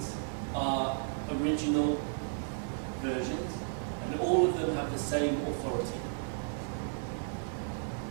are original versions, and all of them have the same authority.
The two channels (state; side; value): silent; left; 55 dB below the other